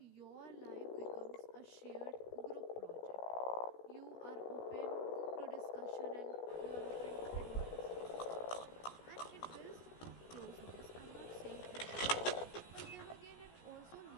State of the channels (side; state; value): right; late; 16 ms